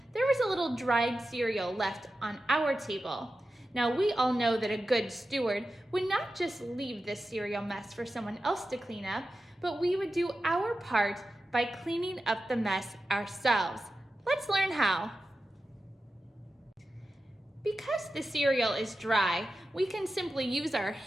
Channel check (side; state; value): both; normal; correlation 0.92